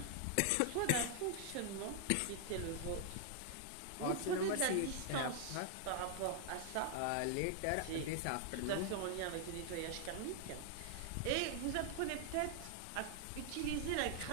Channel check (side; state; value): both; different; correlation 0.00